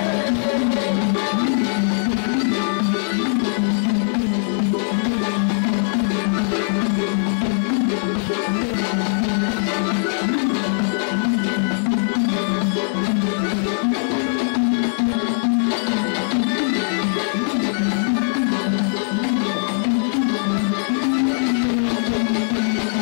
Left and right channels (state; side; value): silent; right; 65 dB below the other